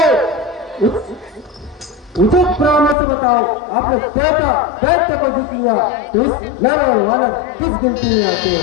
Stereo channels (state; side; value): drops out; right; at 3.0 s